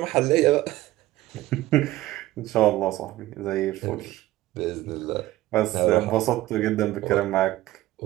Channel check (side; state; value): left; quieter; 16.5 dB